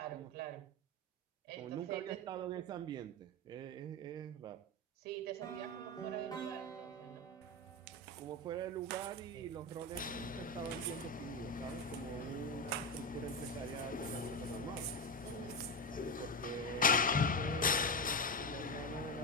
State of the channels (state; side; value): normal; both; correlation 0.15